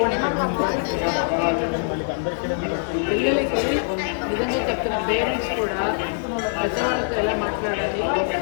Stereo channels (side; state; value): right; silent; 63 dB below the other